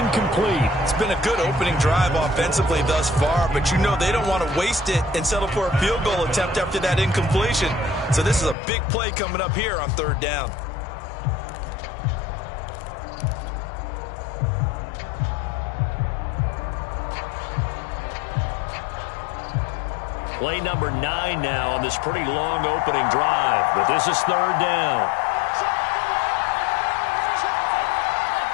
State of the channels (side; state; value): right; drops out; at 8.6 s